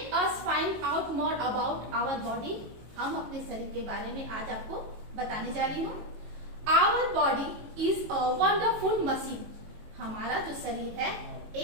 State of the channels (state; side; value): late; left; 19 ms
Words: us find out more about our body. हम अपने शरीर के बारे में आज आपको बताने जा रही हूँ। Our body is a wonderful machine. हमारा जो शरीर है